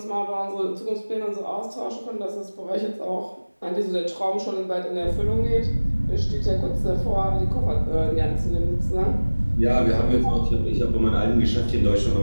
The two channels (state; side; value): inverted; both; correlation -1.00